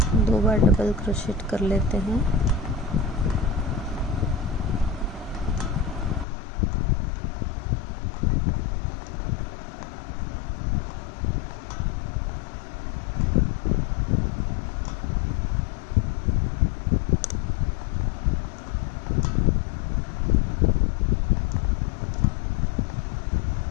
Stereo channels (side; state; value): right; drops out; at 6.2 s